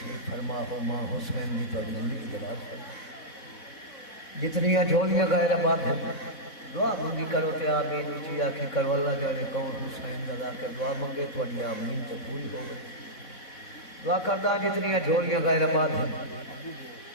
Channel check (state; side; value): late; right; 4.0 ms